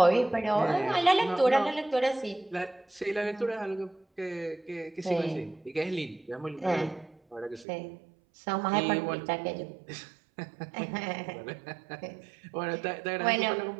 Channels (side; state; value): left; drops out; at 7.7 s